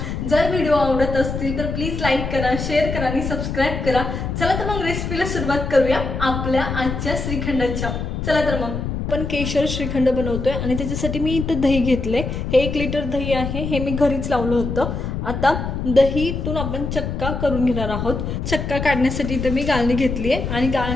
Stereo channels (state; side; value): noise; left; rumble, 4 dB below the sound